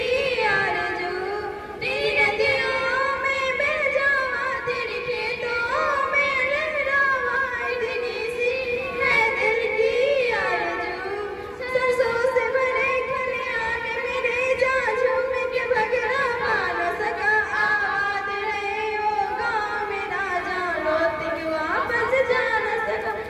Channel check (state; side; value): identical; both; correlation 1.00